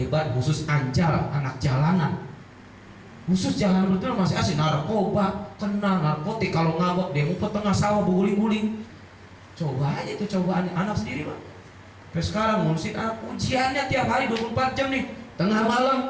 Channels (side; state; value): both; identical; correlation 1.00